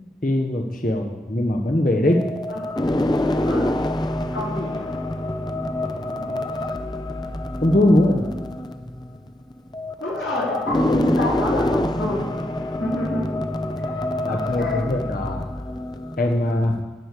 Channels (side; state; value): both; normal; correlation 0.81